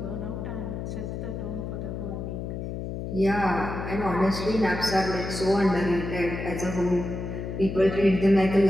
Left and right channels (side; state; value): left; noise; hum, 6 dB below the sound